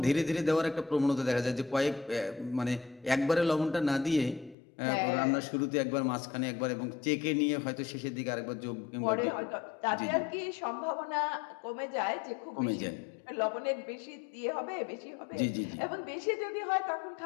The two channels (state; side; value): drops out; right; at 4.5 s